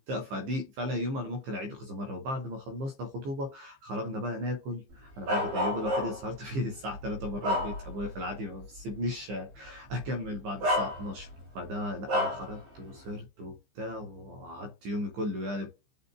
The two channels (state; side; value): late; left; 15 ms